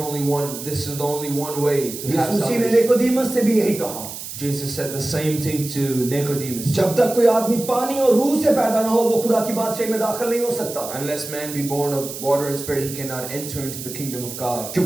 only one. This is the only one way to have यीशु मसीह ने salvation. निकोदेमुस से भी यही कहा, Jesus said the same thing to Nicodemus. जब तक कोई आदमी पानी और रूह से पैदा ना हो वो खुदा की बादशाही में दाखिल नहीं हो सकता, Unless man be born of water and spirit, he cannot enter into the kingdom of God.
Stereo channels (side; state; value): right; noise; hiss, 10 dB below the sound